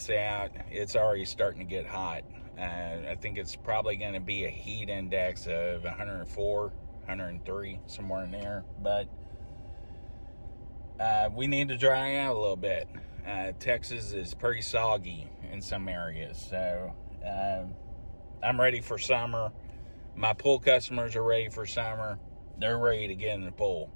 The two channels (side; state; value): both; inverted; correlation -1.00